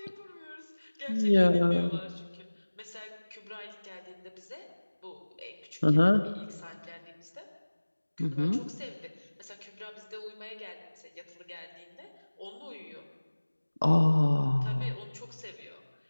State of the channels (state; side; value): inverted; both; correlation -1.00